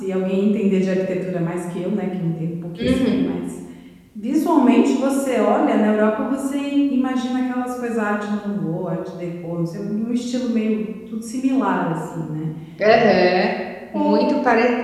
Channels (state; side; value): identical; both; correlation 1.00